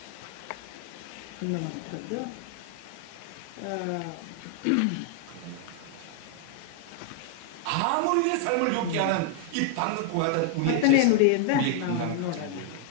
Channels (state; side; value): different; both; correlation 0.00